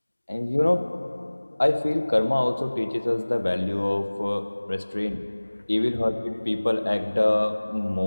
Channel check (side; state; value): both; inverted; correlation -1.00